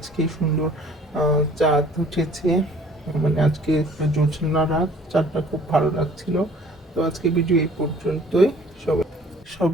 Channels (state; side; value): normal; both; correlation 0.53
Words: সুন্দর চাঁদ উঠেছে, মানে আজকে জ্যোৎস্না রাত, চাঁদটা খুব ভালো লাগছিল। তো আজকে ভিডিও এই পর্যন্তই।